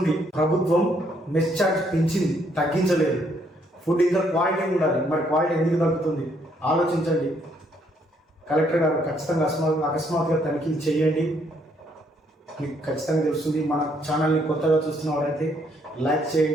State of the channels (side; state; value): both; normal; correlation 0.70